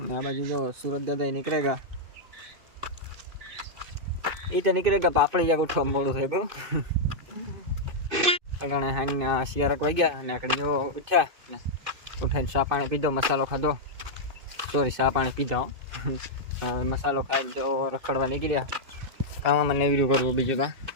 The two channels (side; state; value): left; late; 2.6 ms